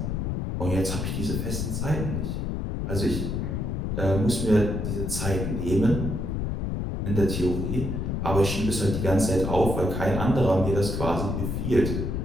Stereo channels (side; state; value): left; noise; rumble, 1 dB below the sound